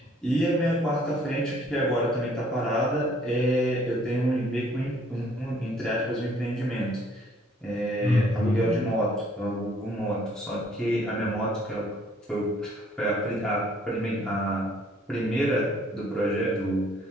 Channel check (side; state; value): both; normal; correlation 0.61